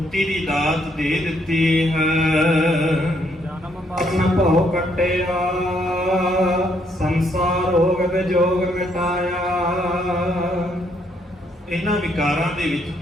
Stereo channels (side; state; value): both; normal; correlation 0.71